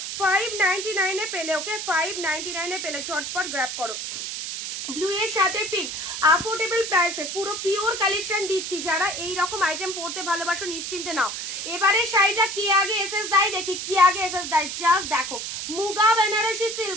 599 এ পেলে, ওকে 599 এ পেলে, ঝটপট গ্র্যাব করো। ব্লু এর সাথে পিঙ্ক, অ্যাফোর্ডেবল প্রাইসে পুরো পিওর কালেকশন দিচ্ছি। যারা এই রকম আইটেম পড়তে ভালোবাসো নিশ্চিন্তে নাও। এবারে শাড়িটা কি আগে এসএস দেয় দেখি, কি আগে এসএস দেয়। জাস্ট দেখো Muga Banarasi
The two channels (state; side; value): noise; right; hiss, 5 dB below the sound